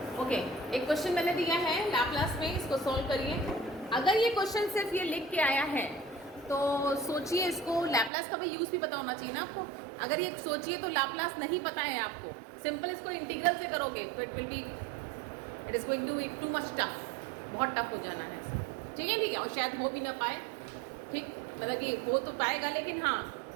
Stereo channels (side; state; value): left; drops out; at 8.1 s